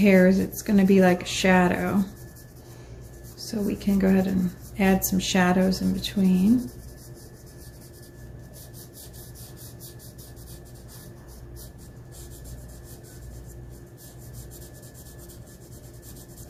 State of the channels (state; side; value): identical; both; correlation 1.00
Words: it's going to be like a shadow. So we can go ahead and add some shadows in between.